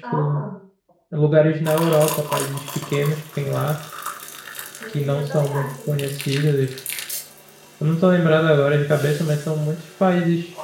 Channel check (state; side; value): identical; both; correlation 1.00